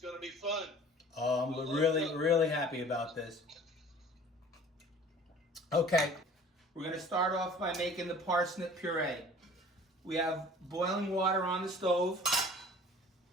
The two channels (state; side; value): normal; both; correlation 0.48